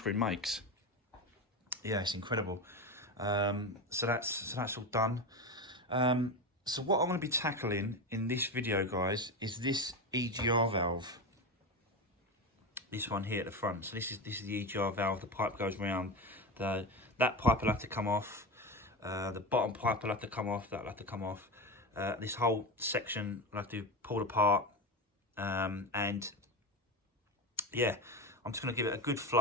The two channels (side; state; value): both; normal; correlation 0.20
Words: makes. Yeah, it's incredible. So that's all done. So what I'm going to be tackling in this video, guys, is this EGR valve. This one here at the front. So this is the EGR valve. The pipe goes round. That pipe will have to come off. The bottom pipe will have to come off. That will have to come off. This whole section will have to be pulled apart. And yeah, I'm just going to give it a good